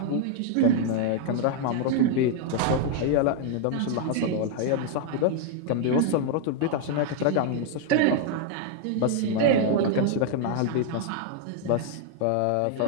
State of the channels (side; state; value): both; different; correlation 0.00